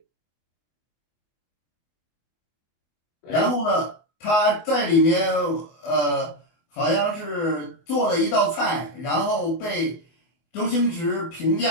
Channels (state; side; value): late; right; 24 ms